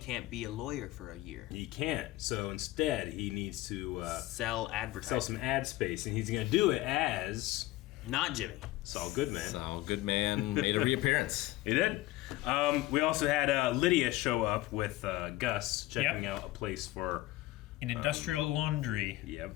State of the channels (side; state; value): right; quieter; 17.4 dB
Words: be a lawyer for a year. he can't. So instead, he needs to Sell advertising. sell some ad space, and he's going to do it as Not Jimmy. Saul Goodman. Saul Goodman made a reappearance. He did. We also had Lydia show up with Gus checking out a place for. An industrial laundry.